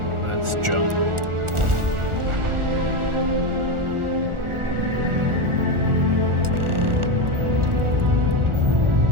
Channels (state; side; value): late; left; 1.4 ms